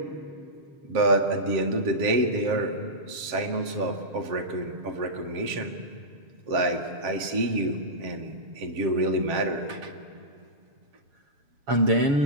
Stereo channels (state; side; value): late; left; 7.4 ms